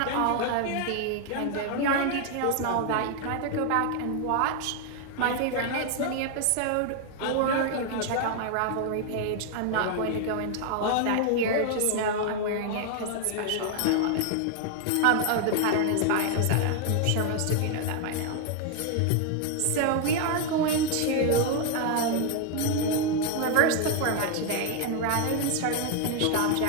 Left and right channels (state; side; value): different; both; correlation 0.00